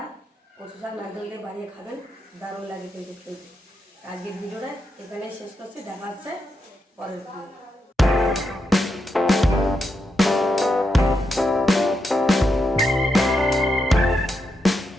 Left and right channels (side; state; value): both; normal; correlation 0.84